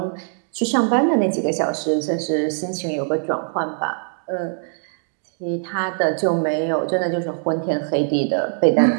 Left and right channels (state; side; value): silent; left; 64 dB below the other